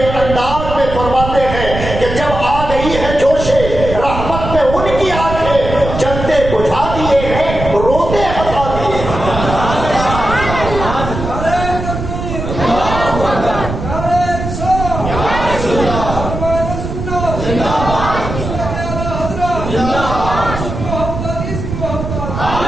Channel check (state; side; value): noise; right; rumble, 6 dB below the sound